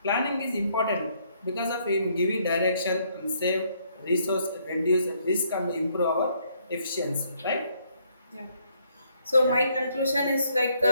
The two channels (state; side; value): inverted; both; correlation -0.70